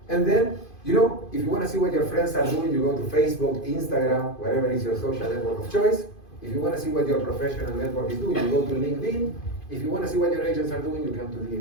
And then, you know, if you want to see what your friends are doing, you go to Facebook, Instagram, wherever is your social network of choice. If you want to see what your professional network is doing, you go to LinkedIn. If you want to see what your agents are doing, you come to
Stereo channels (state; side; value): late; right; 2.5 ms